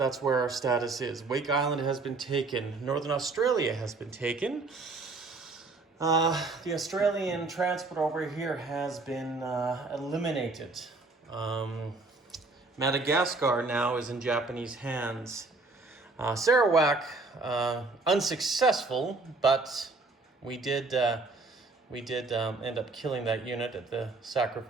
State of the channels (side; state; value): left; quieter; 3.6 dB